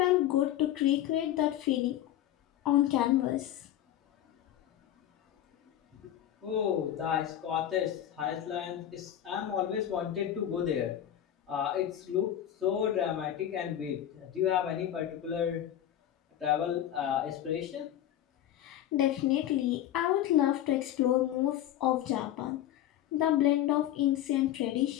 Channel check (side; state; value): right; quieter; 11.7 dB